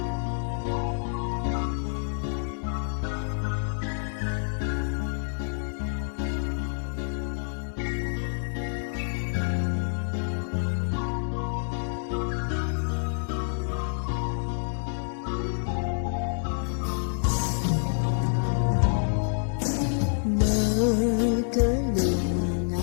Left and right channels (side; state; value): right; silent; 59 dB below the other